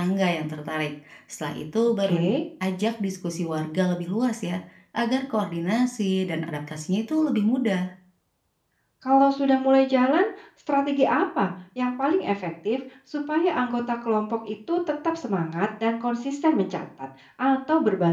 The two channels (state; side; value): identical; both; correlation 1.00